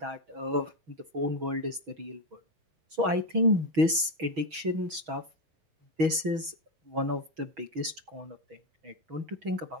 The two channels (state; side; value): late; left; 6.2 ms